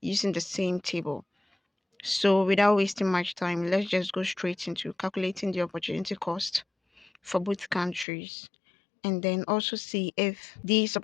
using the same table. So without wasting much time, let's just go straight into calculating the opportunity cost for both countries and then also see if these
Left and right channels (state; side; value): drops out; right; at 8.1 s